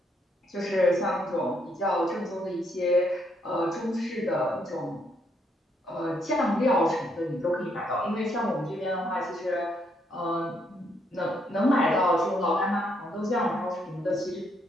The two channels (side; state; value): both; normal; correlation 0.73